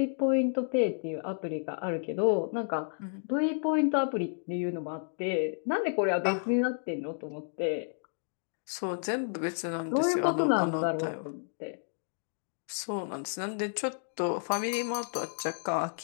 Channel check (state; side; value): silent; right; digital silence